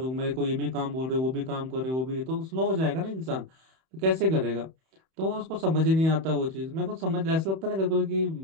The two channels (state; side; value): late; left; 31 ms